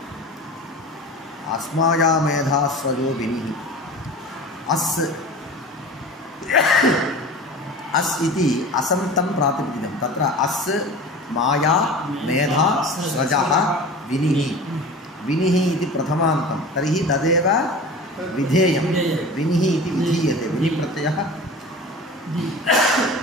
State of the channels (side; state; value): both; normal; correlation 0.36